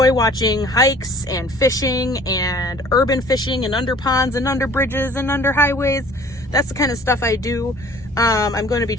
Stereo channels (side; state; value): both; normal; correlation 0.51